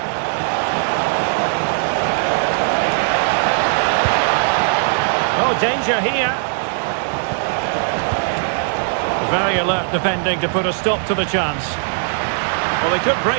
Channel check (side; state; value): left; silent; digital silence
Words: Oh, danger here. Very alert defending to put a stop to the chance. Well, they could